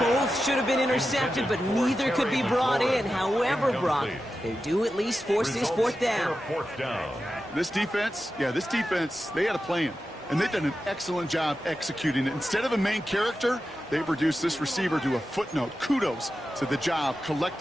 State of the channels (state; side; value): normal; both; correlation 0.91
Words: should have been intercepted, but neither could be brought in. However, Brock, they do at least force this 4th down. This defense, they had a plan. And they've done an excellent job executing it. Instead of a main character, they've reduced this receiver to a footnote. Kudos to the job